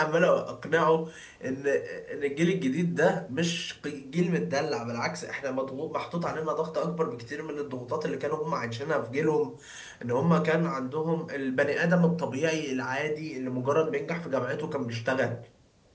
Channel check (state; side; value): identical; both; correlation 1.00